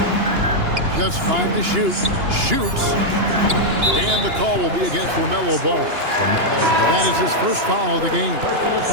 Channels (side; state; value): left; late; 2.9 ms